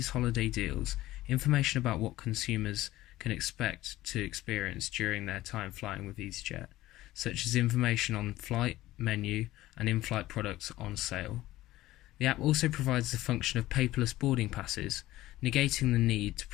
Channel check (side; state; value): right; quieter; 16.3 dB